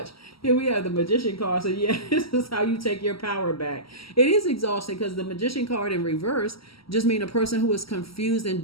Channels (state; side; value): late; right; 0.75 ms